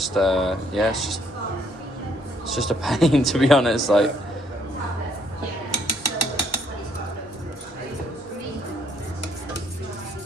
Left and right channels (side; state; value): both; normal; correlation 0.68